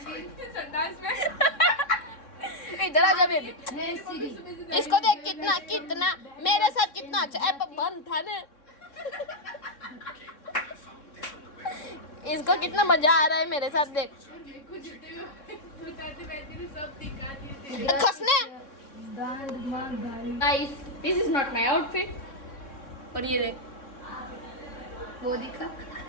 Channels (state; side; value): late; right; 3.6 ms